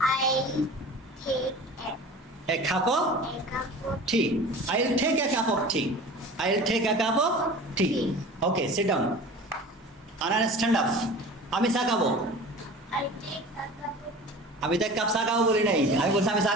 I'll take a cup of tea. I will take a cup of tea. I will take a cup of tea. Okay, sit down. Anna, stand up. আমি চা খাবো। I'll take a cup of tea. আমি তো এক cup চা খাবো বলি নাই, আমি বলছি আমি চা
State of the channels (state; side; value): normal; both; correlation 0.39